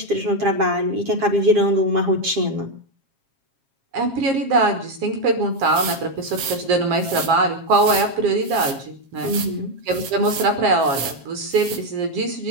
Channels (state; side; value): late; left; 7.4 ms